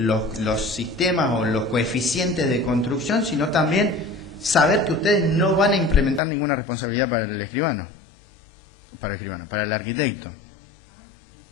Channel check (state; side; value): drops out; right; at 6.2 s